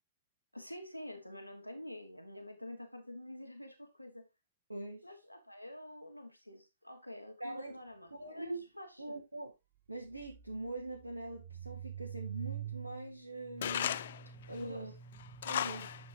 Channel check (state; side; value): inverted; both; correlation -0.69